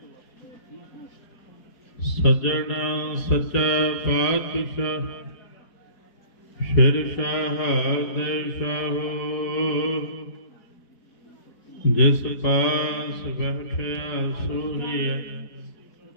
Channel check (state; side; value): late; right; 5.0 ms